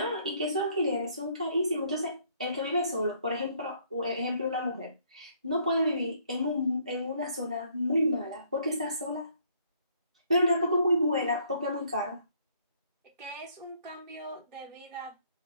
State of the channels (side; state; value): both; inverted; correlation -0.65